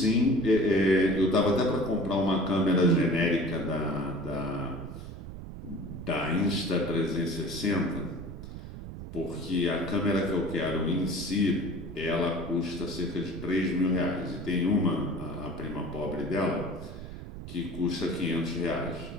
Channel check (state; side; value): noise; right; rumble, 11 dB below the sound